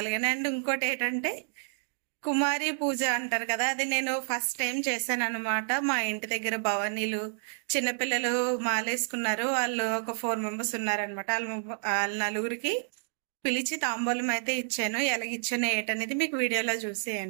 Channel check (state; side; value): silent; left; digital silence